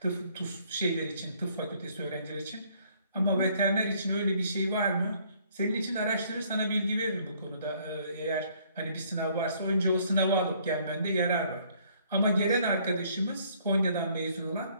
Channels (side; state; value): both; inverted; correlation -0.63